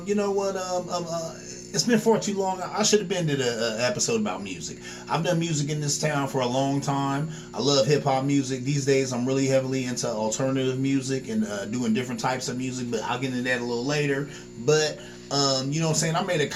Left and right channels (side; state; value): both; identical; correlation 1.00